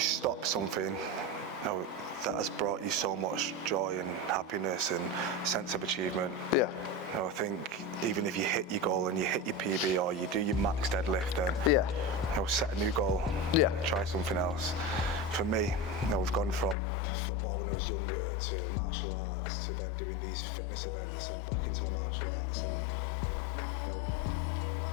something, you know, that has brought you so much joy and happiness and sense of achievement? You know, I think even if you hit your goal and you hit your PB or you do your max deadlift, then you know, set a new goal. Try something else. For me, you know, we've gone from football when I was younger to martial arts to then doing these fitness events and back into my martial arts, and you know,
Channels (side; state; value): right; drops out; at 16.8 s